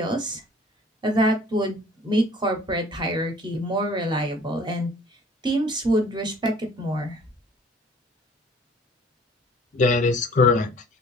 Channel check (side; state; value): both; normal; correlation 0.52